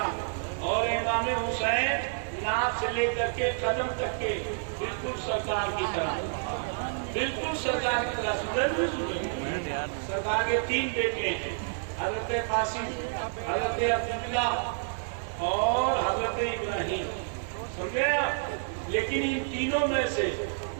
اور امام حسین ناف سے لے کر کے قدم تک کے بالکل سرکار کی طرح، بالکل سرکار کی طرح. سرکار کے 3 بیٹے ہیں، حضرت قاسم، حضرت عبداللہ اور حضرت ابراہیم. سمجھے؟ لیکن ان تینوں میں سے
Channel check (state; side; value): silent; left; digital silence